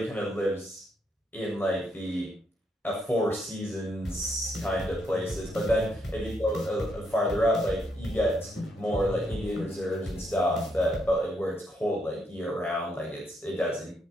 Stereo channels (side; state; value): both; normal; correlation 0.76